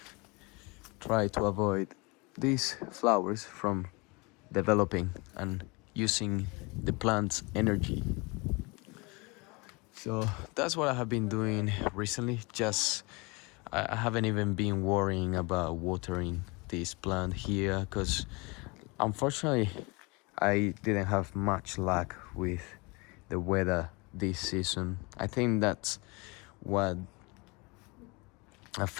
try to avoid these flowers from developing and using the plant's energy. So that's what I have been doing recently. Just I haven't even been worrying about watering this plant here, because unfortunately I didn't have much luck with the weather this season. I think that's what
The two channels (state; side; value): quieter; right; 27.4 dB